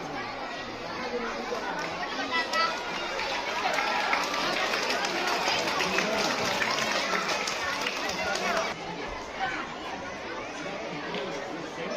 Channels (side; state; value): both; identical; correlation 1.00